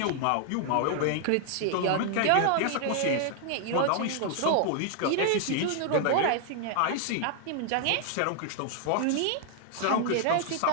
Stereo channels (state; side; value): different; both; correlation 0.00